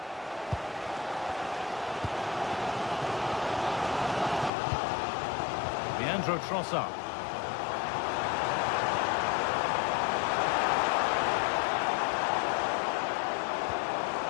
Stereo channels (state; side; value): drops out; right; at 4.5 s